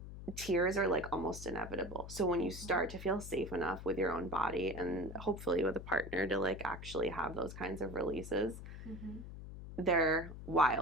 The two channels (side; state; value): left; noise; hum, 11 dB below the sound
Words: tears are like almost inevitable. So when you start to feel safe enough with your own body and hopefully with a partner to like actually have those kinds of releases, they're